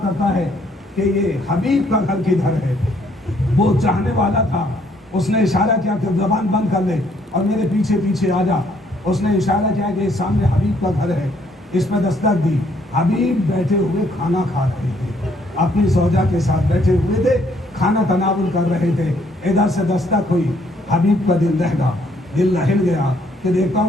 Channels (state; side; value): normal; both; correlation 0.67